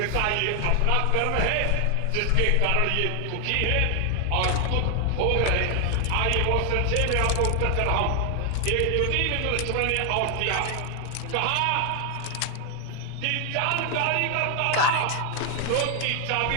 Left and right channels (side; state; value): both; different; correlation 0.00